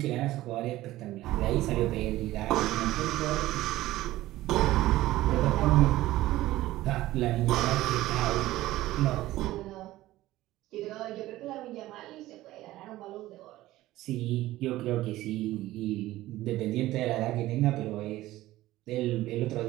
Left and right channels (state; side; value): quieter; left; 16.3 dB